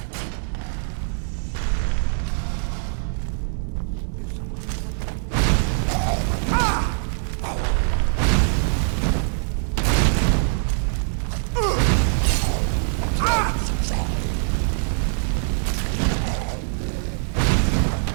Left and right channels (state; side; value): silent; left; digital silence